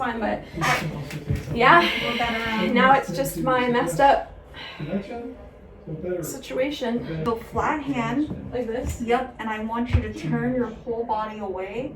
But yeah, We're better now it's just my messed up connection, so better. situation. So flat hand. Like this. Yep. And I want you to turn your whole body away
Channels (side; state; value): both; identical; correlation 1.00